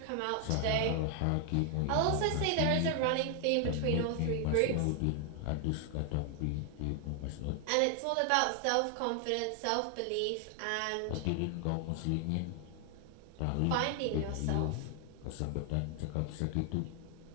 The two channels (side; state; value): both; different; correlation 0.00